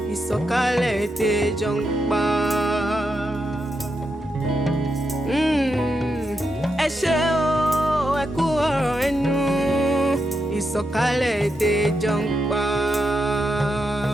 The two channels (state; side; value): normal; both; correlation 0.84